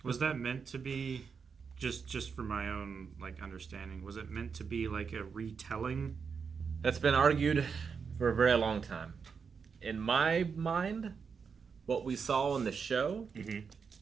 Was that meant to be, just for my own understanding, was it meant to be like a retelling? That's been argued for a very long time. In my mind, what we saw in the show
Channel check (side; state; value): left; quieter; 5.9 dB